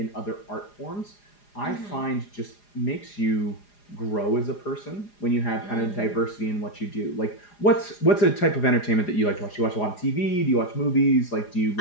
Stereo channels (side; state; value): right; late; 4.9 ms